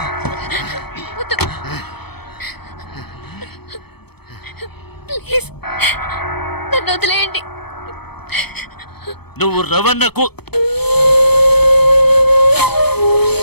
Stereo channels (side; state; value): right; late; 0.97 ms